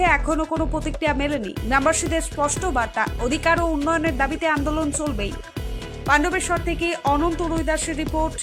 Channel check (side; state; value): both; identical; correlation 1.00